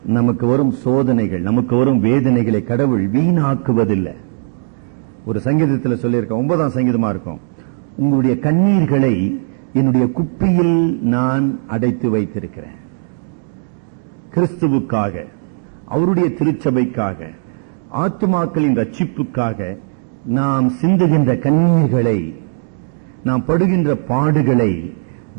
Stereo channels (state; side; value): silent; left; digital silence